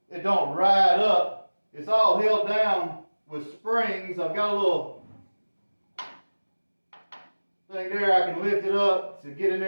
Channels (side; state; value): both; inverted; correlation -1.00